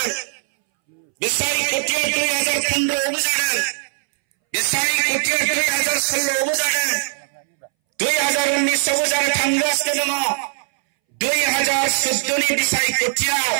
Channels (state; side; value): silent; left; 64 dB below the other